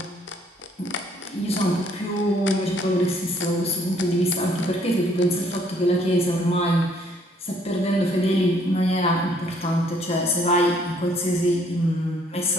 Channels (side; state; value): both; normal; correlation 0.64